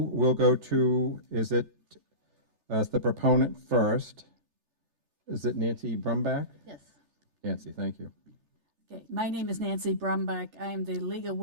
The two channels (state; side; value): late; left; 3.3 ms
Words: we'll go to, is it, as the proponent first, is it Nancy Brumbach? Yes. Nancy, thank you. Okay, my name is Nancy Brumbach. I am the League of